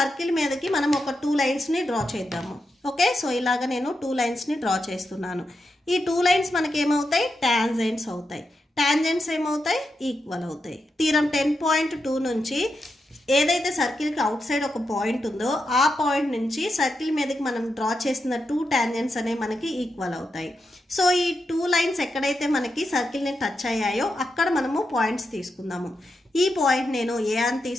మీదకి మనం ఒక 2 లైన్స్ని డ్రా చేద్దాము. ఓకే, సో ఇలాగ నేను 2 లైన్స్ని డ్రా చేస్తున్నాను. ఈ 2 లైన్స్ మనకి ఏమవుతాయి? టాంజెంట్స్ అవుతాయి. టాంజెంట్స్ ఏమవుతాయి? ఈక్వల్ అవుతాయి. థీరం 10.2 నుంచి ఏదైతే సర్కిల్కి అవుట్ సైడ్ ఒక పాయింట్ ఉందో ఆ పాయింట్ నుంచి సర్కిల్ మీదకి మనం డ్రా చేసిన 2 టాంజెంట్స్ అనేవి మనకి ఈక్వల్ అవుతాయి. సో ఈ 2 లైన్స్ ఎక్కడైతే మనకి సర్కిల్ని టచ్ అయ్యాయో అక్కడ మనము పాయింట్స్ తీసుకుందాము. ఈ పాయింట్ నేను ఏ అని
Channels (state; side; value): normal; both; correlation 0.86